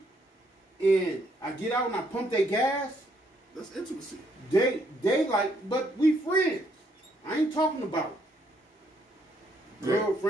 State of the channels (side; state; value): both; normal; correlation 0.71